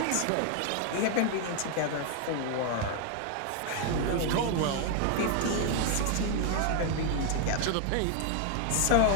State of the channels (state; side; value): different; both; correlation 0.00